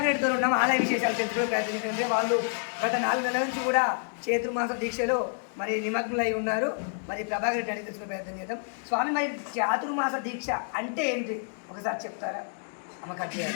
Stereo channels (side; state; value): right; silent; 59 dB below the other